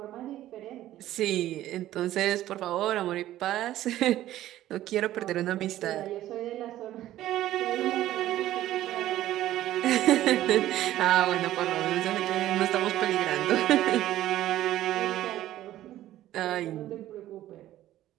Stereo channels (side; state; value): left; quieter; 13.8 dB